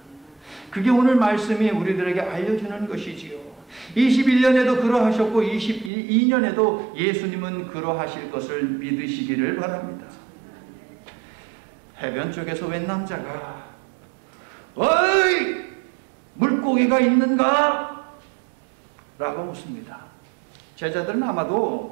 그게 오늘 말씀이 우리들에게 알려주는 것이지요. 21년에도 그러하셨고 22년에도 예수님은 그러하실 것을 믿으시기를 바랍니다. 해변 쪽에서 웬 남자가 어이! 물고기가 있는가? 라고 묻습니다. 제자들은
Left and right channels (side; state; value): left; drops out; at 5.9 s